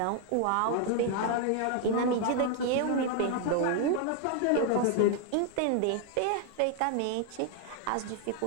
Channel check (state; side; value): different; both; correlation 0.00